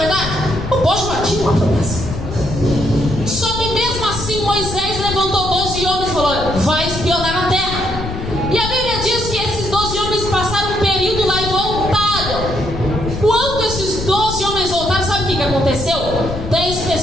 O povo já tinha uma promessa. Só que mesmo assim Moisés levantou 12 homens e falou: olha, vai espionar a terra. E a Bíblia diz que esses 12 homens passaram um período lá e voltaram. Quando esses 12 homens voltaram, sabe o que aconteceu? 10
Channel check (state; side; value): noise; left; rumble, 7 dB below the sound